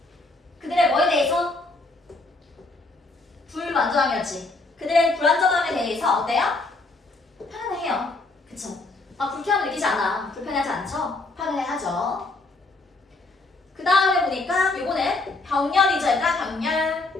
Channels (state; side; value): quieter; right; 3.2 dB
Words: 그들의 뭐에 대해서? 불만족함이었지. 그들의 불안정함에 대해서 어때요? 편안해요. 그쵸? 불쾌함을 느끼지 않아. 불편하지 않죠? 편안해하죠. 그 다음에 보니까 요거는 병렬이죠. 얘들아 병렬.